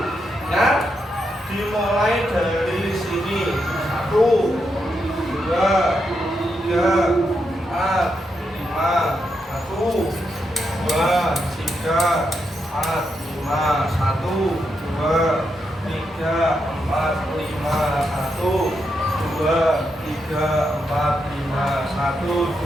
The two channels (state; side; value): normal; both; correlation 0.83